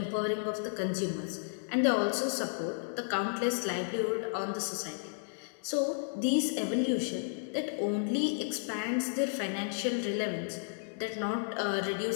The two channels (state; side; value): silent; right; digital silence